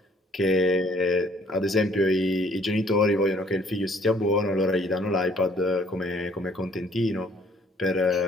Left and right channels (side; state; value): both; normal; correlation 0.60